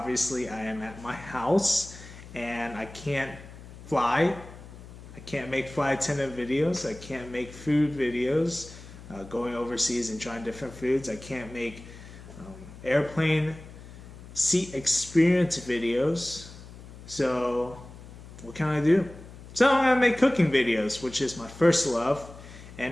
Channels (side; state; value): left; noise; hum, 16 dB below the sound